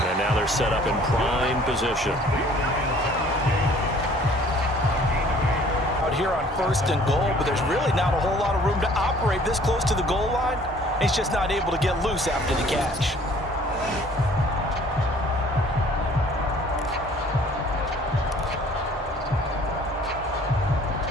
And now they're set up in prime position. Out here on 1st and goal, but there's really not a whole lot of room to operate this close to the goal line. He's just not able to get loose after the catch.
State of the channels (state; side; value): normal; both; correlation 0.55